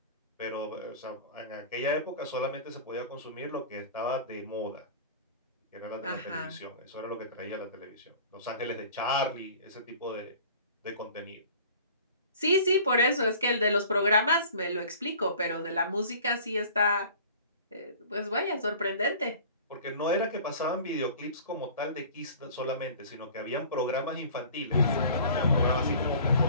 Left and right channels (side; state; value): both; inverted; correlation -0.44